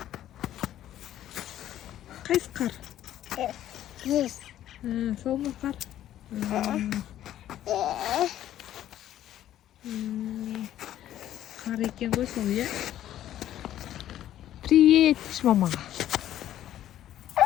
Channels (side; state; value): right; quieter; 12.2 dB